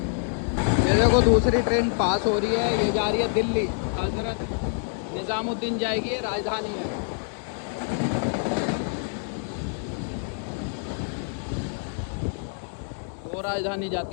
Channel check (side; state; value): right; silent; digital silence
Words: देखो दूसरी ट्रेन पास हो रही है, ये जा रही है दिल्ली। हजरत निज़ामुद्दीन जाएगी, ये राजधानी है। दो राजधानी